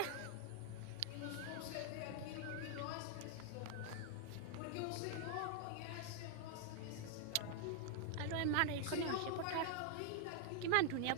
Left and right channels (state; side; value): different; both; correlation 0.00